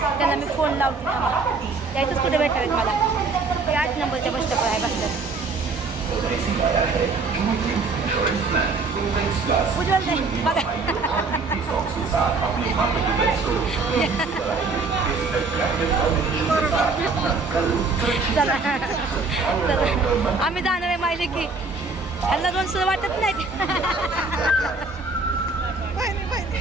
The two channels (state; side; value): quieter; left; 4.0 dB